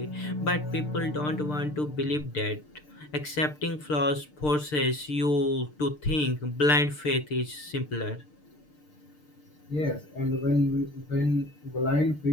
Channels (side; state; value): right; late; 6.7 ms